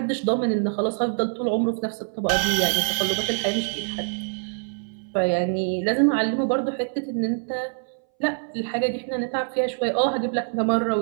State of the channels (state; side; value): silent; left; 62 dB below the other